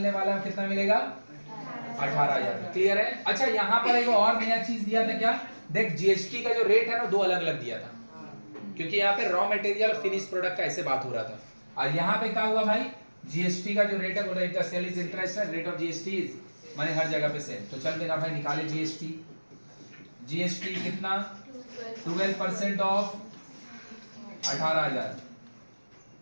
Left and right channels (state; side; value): inverted; both; correlation -1.00